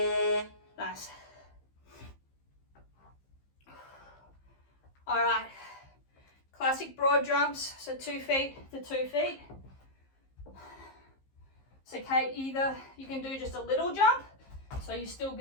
Nice. All right, class classic broad jumps, so 2 feet to 2 feet. So Kate, either you can do just a little jump, so you're still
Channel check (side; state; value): right; late; 15 ms